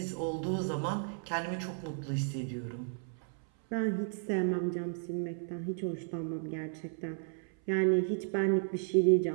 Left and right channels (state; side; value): silent; left; 55 dB below the other